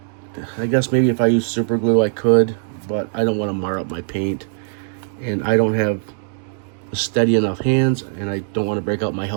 I guess maybe if I use super glue I could, but I don't want to mar up my paint, and I don't have steady enough hands, and I don't want to break out my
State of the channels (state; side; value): silent; left; digital silence